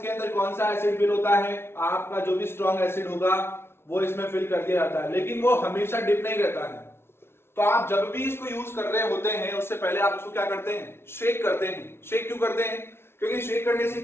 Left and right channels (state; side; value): late; right; 0.12 ms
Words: अंदर कौन सा एसिड फिल होता है? आपका जो भी स्ट्रॉन्ग एसिड होगा वो इसमें फिल कर दिया जाता है, लेकिन वो हमेशा डिप नहीं रहता है। तो आप जब भी इसको यूज कर रहे होते हैं उससे पहले आप उसको क्या करते हैं? शेक करते हैं। शेक क्यों करते हैं? क्योंकि शेक करने से